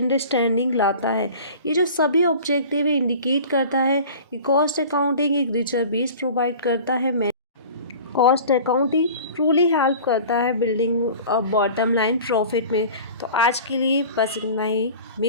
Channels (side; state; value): both; inverted; correlation -0.41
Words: लाता है। ये जो सभी ऑब्जेक्टिव है इंडिकेट करता है कि कॉस्ट अकाउंटिंग एक रिचर बेस प्रोवाइड करता है। कॉस्ट अकाउंटिंग ट्रूली हेल्प करता है बिल्डिंग बॉटम लाइन प्रॉफिट में। तो आज के लिए बस इतना